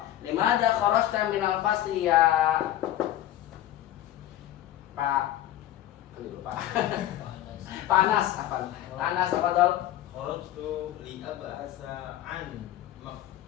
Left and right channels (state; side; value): quieter; right; 13.2 dB